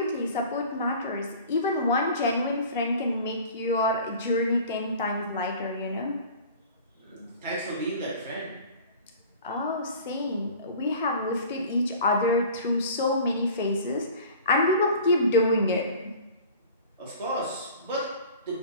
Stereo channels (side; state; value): both; inverted; correlation -0.43